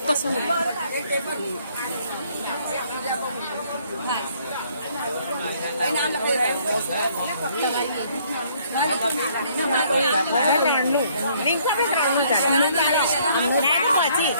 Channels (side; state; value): both; inverted; correlation -0.63